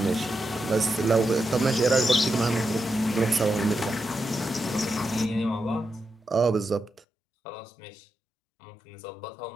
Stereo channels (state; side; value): drops out; right; at 7.1 s